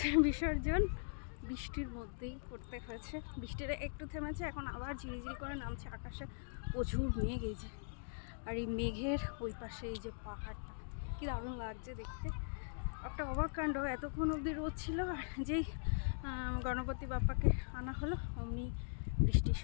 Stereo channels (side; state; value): right; silent; digital silence